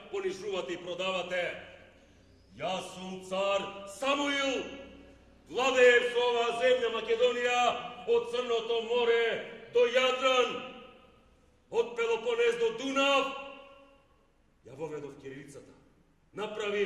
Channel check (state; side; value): identical; both; correlation 1.00